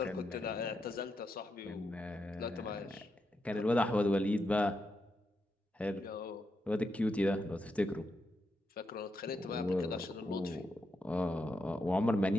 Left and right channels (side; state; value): both; normal; correlation 0.84